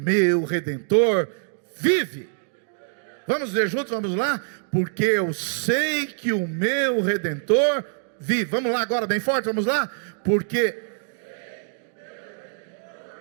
Redentor vive. Vamos ler juntos, vamos lá? Porque eu sei que o meu Redentor vive. Vamos lá agora bem forte, vamos lá? Porque,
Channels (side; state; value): left; silent; 62 dB below the other